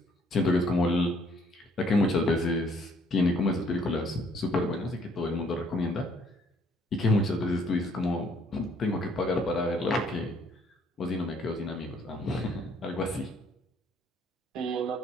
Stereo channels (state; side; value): normal; both; correlation 0.64